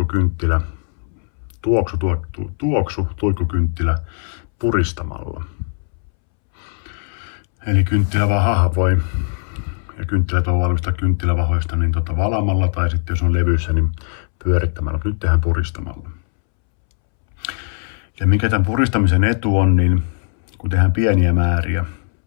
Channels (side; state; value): right; silent; 66 dB below the other